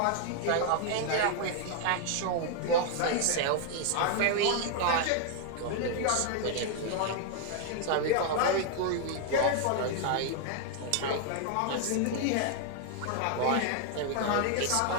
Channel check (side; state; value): both; different; correlation 0.00